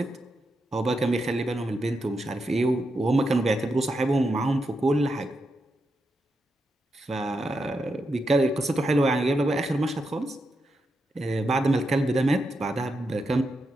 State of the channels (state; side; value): normal; both; correlation 0.85